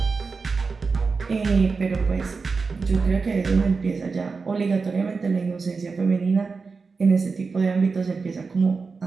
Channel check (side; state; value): left; quieter; 4.6 dB